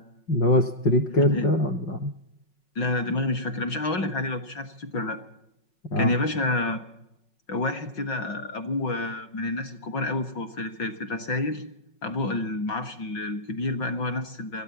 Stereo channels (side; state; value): right; late; 5.4 ms